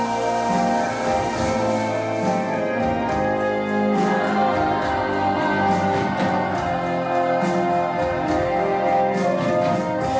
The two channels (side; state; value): both; identical; correlation 1.00